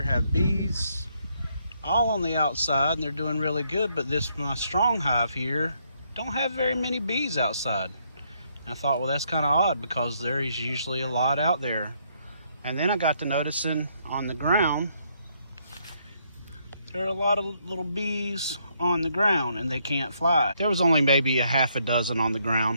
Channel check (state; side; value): inverted; both; correlation -0.73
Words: have bees all on the outside and they're doing really good, but my strong hive here don't have very many bees outside. And I thought, well, that's kind of odd because there is usually a lot out there. And then I got to noticing on the ground, there are a lot of little bees on the ground and they can't fly. There was only maybe a half a dozen on the